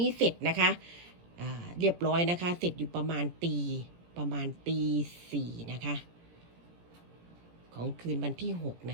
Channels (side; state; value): left; late; 17 ms